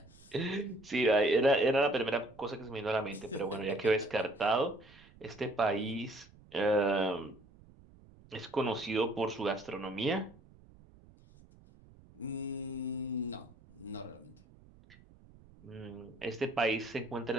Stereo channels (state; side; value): noise; right; rumble, 24 dB below the sound